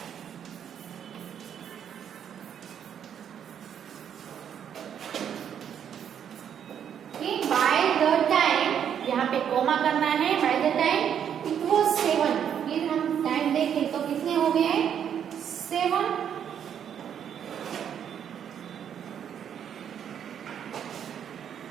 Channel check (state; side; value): quieter; left; 8.8 dB